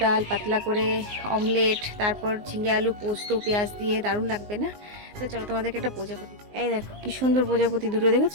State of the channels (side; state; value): left; late; 19 ms